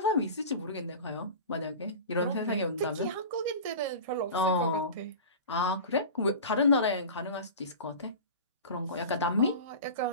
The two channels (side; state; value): both; inverted; correlation -0.33